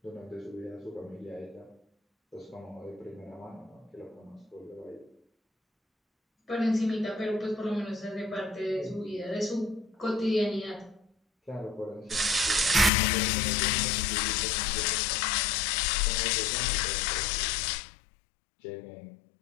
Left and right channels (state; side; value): drops out; right; at 12.9 s